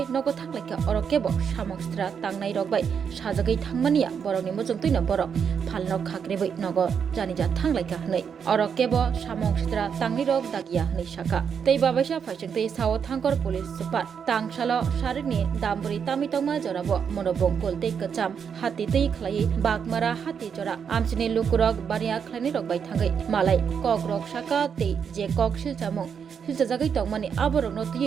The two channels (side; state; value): left; quieter; 7.0 dB